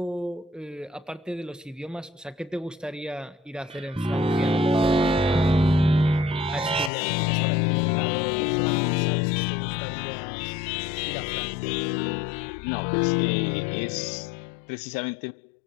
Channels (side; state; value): right; drops out; at 6.9 s